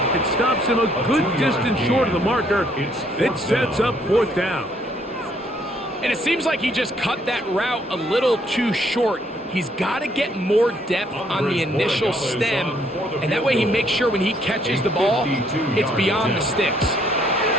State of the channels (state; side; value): normal; both; correlation 0.67